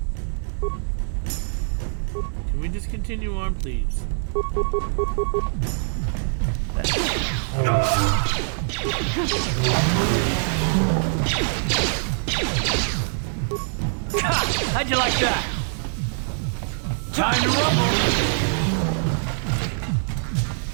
Can we just continue on, please? How'd you like that? Time to rumble!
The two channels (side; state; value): left; silent; 57 dB below the other